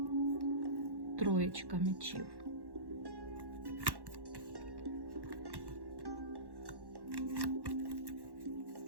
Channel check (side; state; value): left; late; 1.1 ms